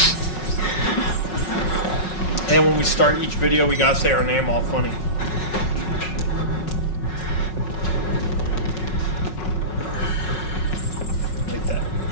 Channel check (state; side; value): late; right; 5.4 ms